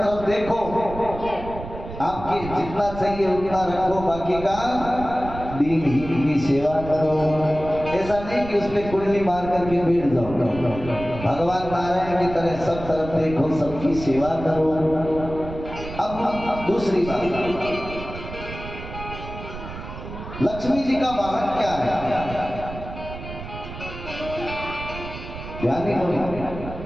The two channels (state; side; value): noise; right; rumble, 11 dB below the sound